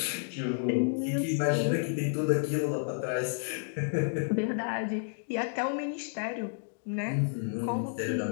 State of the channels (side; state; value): right; silent; digital silence